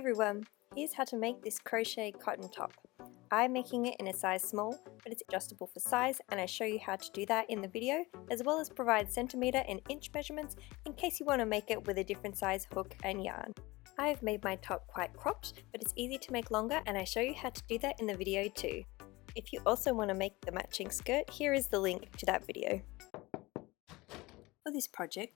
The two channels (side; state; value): right; quieter; 21.7 dB